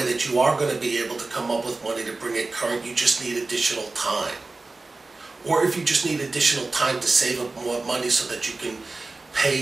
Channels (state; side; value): quieter; left; 3.5 dB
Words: that you are going to be able to come up with money to bring it current, you just need additional time. Or if you just need additional time to save up more money so that you can